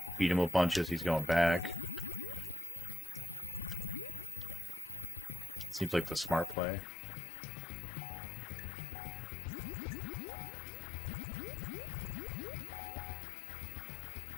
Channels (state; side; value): drops out; right; at 6.6 s